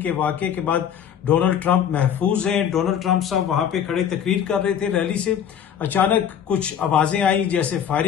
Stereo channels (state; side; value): quieter; right; 8.8 dB